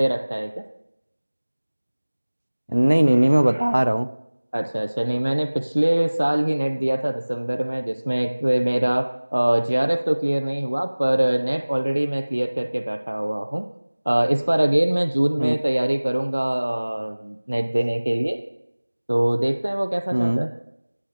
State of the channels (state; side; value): inverted; both; correlation -1.00